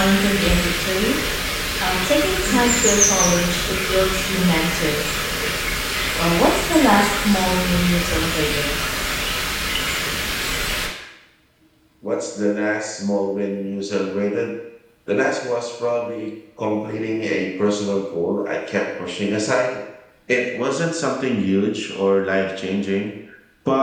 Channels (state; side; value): identical; both; correlation 1.00